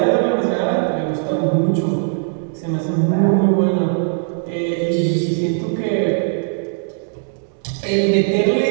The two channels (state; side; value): silent; left; digital silence